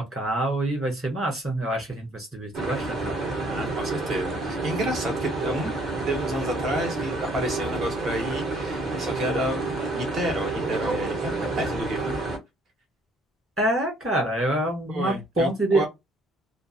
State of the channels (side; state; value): both; normal; correlation 0.62